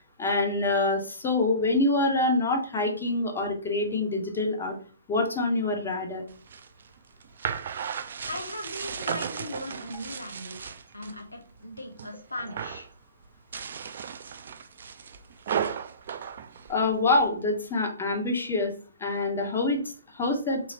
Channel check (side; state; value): both; inverted; correlation -0.36